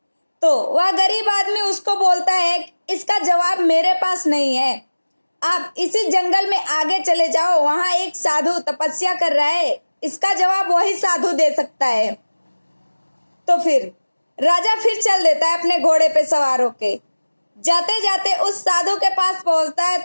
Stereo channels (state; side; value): inverted; both; correlation -1.00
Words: तो वह गरीब आदमी उसको बोलता है, इसका जवाब मेरे पास नहीं है, आप इसी जंगल में आगे चले जाओ, वहां एक साधु तपस्या कर रहा है, इसका जवाब वही साधु दे सकता है। तो फिर राजा फिर चल देता है अपने घोड़े पे सवार होके। जाते जाते उस साधु के पास पहुंचता है